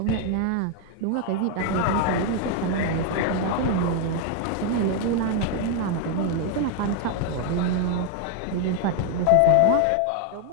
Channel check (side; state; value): both; different; correlation 0.00